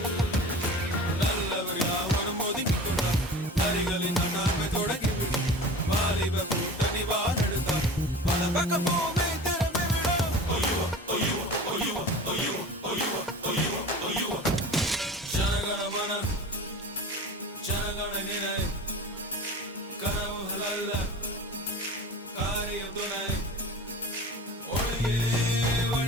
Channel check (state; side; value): normal; both; correlation 0.37